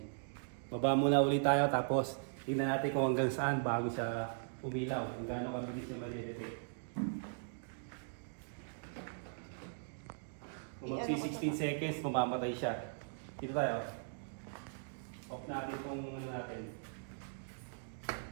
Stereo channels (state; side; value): silent; left; digital silence